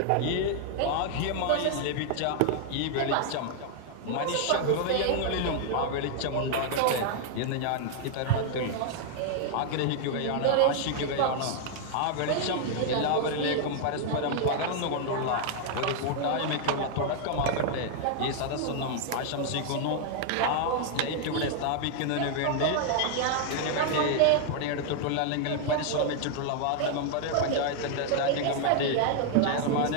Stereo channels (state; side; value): different; both; correlation 0.00